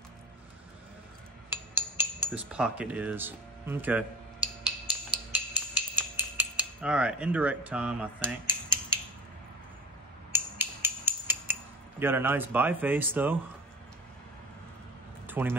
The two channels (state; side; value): normal; both; correlation 0.34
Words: this pocket is. Okay. All right, indirect time, I think. Got a nice biface though. 20